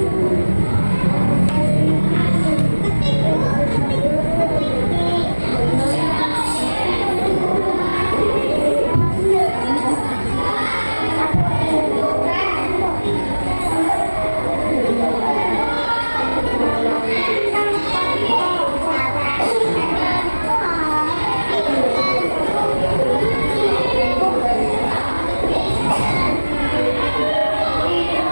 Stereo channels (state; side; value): inverted; both; correlation -1.00